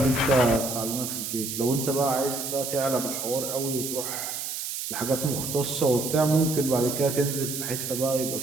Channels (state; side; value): noise; right; hiss, 5 dB below the sound